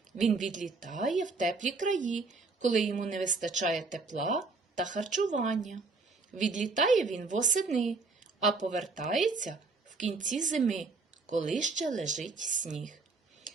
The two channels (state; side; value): quieter; left; 4.0 dB